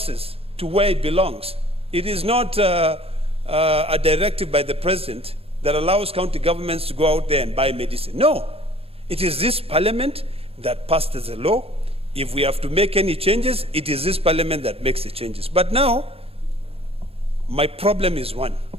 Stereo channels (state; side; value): late; left; 0.28 ms